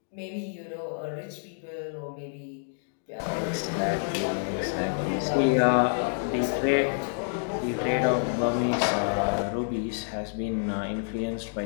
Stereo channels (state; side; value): silent; right; digital silence